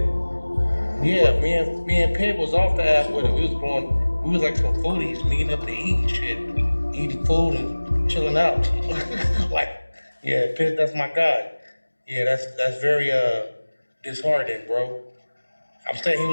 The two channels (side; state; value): both; inverted; correlation -1.00